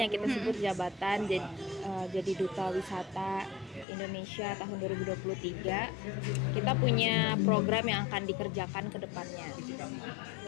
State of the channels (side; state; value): right; drops out; at 3.9 s